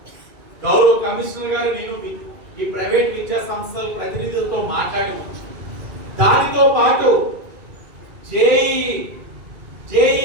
గౌరవ కమిషనర్ గారు నేను ఈ ప్రైవేట్ విద్యా సంస్థల ప్రతినిధులతో మాట్లాడి, దానితో పాటు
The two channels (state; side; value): late; left; 2.4 ms